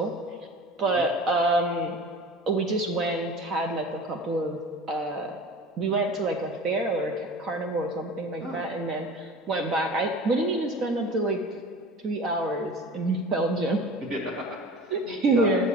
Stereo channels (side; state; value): both; normal; correlation 0.38